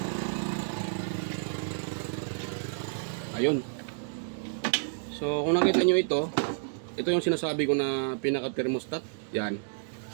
Ayun. So, kung nakita nyo ito yung sinasabi ko na pinaka-thermostat. Yan.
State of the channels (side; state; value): left; silent; digital silence